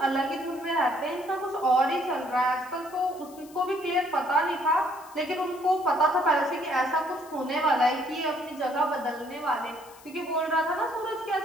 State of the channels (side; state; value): left; noise; hiss, 23 dB below the sound